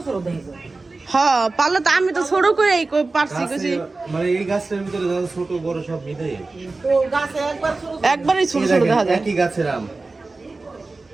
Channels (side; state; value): left; quieter; 3.5 dB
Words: হ্যাঁ পারলো তো, আমি তো ছোট করে পারছি কিছু। মানে এই গাছের ভিতরে যা ছোট বড় সব মিলে একবারই ছোট ছোট দেখা যায়। একই গাছের আম।